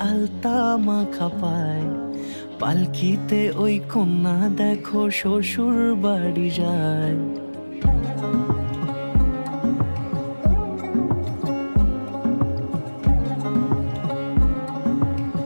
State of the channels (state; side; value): inverted; both; correlation -1.00